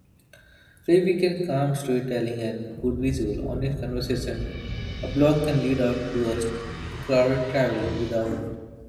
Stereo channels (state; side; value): identical; both; correlation 1.00